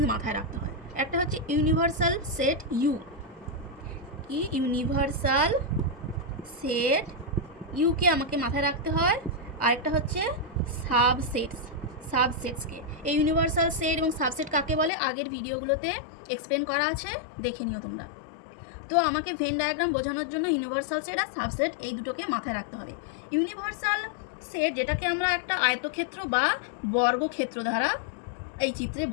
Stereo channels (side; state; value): right; drops out; at 14.9 s